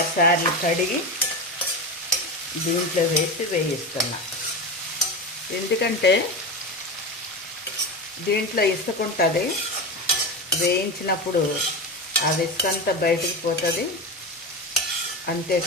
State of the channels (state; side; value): normal; both; correlation 0.21